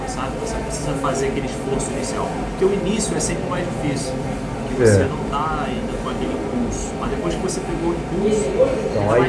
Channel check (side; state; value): both; identical; correlation 1.00